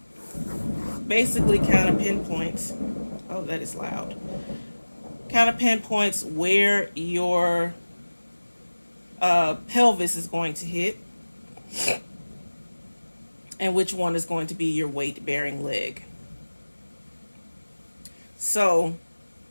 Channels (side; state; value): both; inverted; correlation -1.00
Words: basically kind of pinpoints, oh, that is loud, kind of pinpoints where your pelvis is going to hit and which one is going to be your weight-bearing leg. So